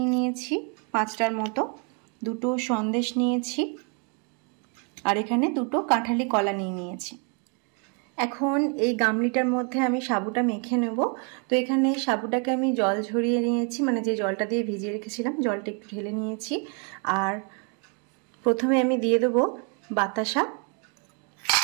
নিয়েছি 5টার মতো। 2টো সন্দেশ নিয়েছি। আর এখানে 2টো কাঁঠালি কলা নিয়েছি। এখন এই গামলিটার মধ্যে আমি সাবুটা মেখে নেব। তো এখানে সাবুটাকে আমি জল ঝরিয়ে নিয়েছি, মানে যে জলটা দিয়ে ভিজিয়ে রেখেছিলাম জলটা একটু ঢেলে নিয়েছি। আর প্রথমে আমি দিয়ে দেবো বাতাসা।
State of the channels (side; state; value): left; quieter; 37.4 dB